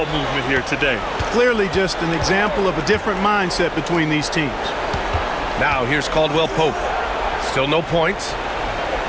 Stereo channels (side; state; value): both; identical; correlation 1.00